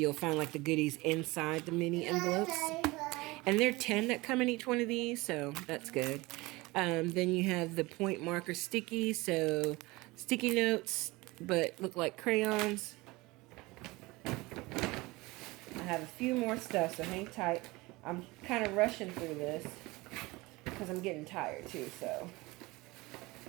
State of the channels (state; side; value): quieter; left; 22.2 dB